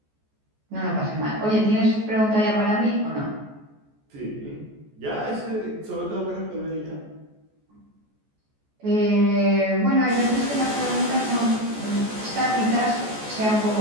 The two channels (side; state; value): left; late; 14 ms